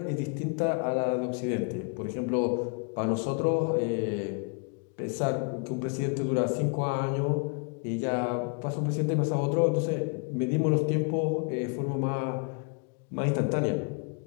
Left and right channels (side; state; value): right; quieter; 36.9 dB